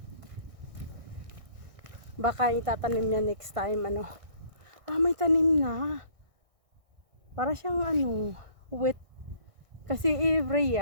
Baka itatanim niya next time, ano. May tanim na. Para siyang, wet. Kasi every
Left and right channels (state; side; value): late; left; 1.6 ms